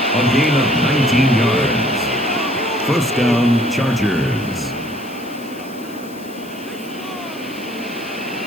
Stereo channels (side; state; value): left; noise; hiss, 21 dB below the sound